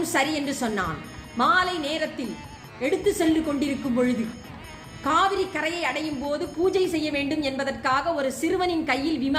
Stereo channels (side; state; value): both; identical; correlation 1.00